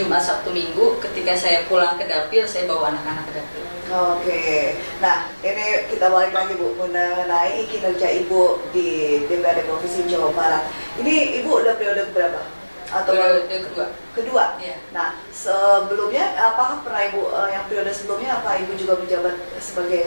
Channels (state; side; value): inverted; both; correlation -1.00